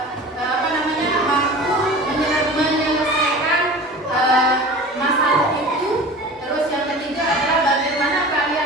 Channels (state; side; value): normal; both; correlation 0.37